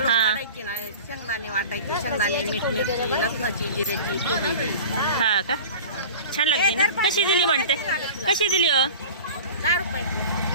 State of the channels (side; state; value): both; inverted; correlation -0.37